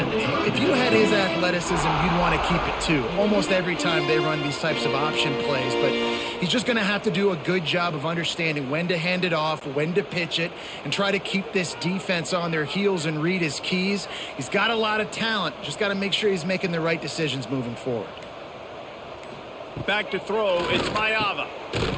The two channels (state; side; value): identical; both; correlation 1.00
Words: if you had his athleticism, you'd want to keep it too. Almost every time they run these types of option plays. But he's just going to have to do a good job of understanding when to hand it off, when to pitch it, and try to keep this defense on their heels and read his keys. He's got a lot of talent. Just got to make sure he's making the right decisions moving forward. Back to throw, it's Mayava.